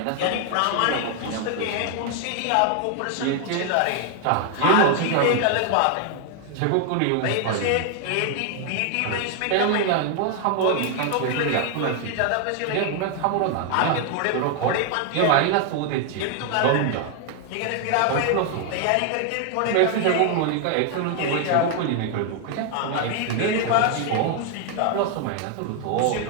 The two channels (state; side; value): different; both; correlation 0.00